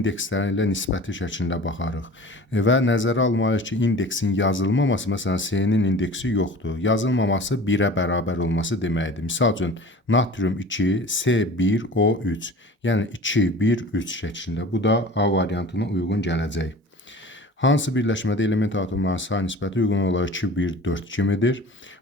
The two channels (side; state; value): both; normal; correlation 0.40